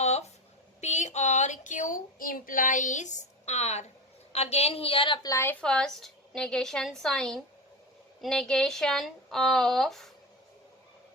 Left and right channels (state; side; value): normal; both; correlation 0.23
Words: P or Q implies R. Again here apply first negation sign. Negation of